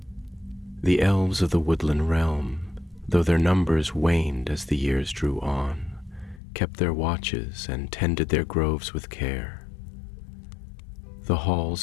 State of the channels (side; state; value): right; drops out; at 6.4 s